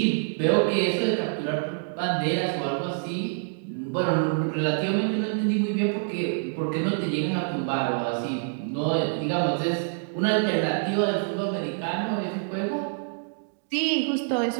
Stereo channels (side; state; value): left; silent; digital silence